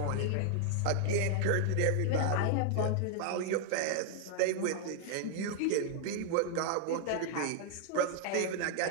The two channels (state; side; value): different; both; correlation 0.00